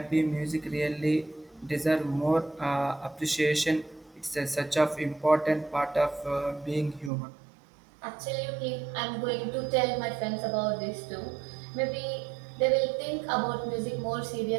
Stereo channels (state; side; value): drops out; left; at 7.1 s